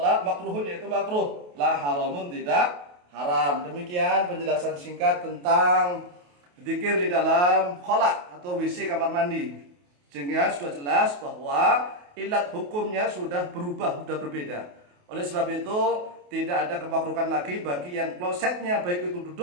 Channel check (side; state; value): left; late; 28 ms